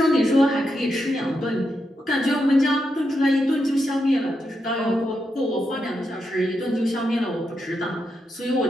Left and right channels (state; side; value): normal; both; correlation 0.84